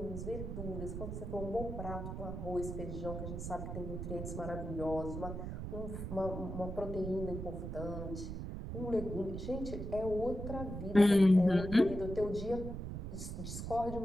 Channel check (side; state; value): right; noise; rumble, 6 dB below the sound